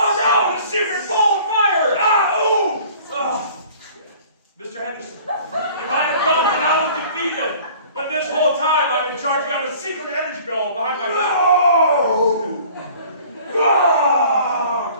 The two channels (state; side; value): inverted; both; correlation -0.49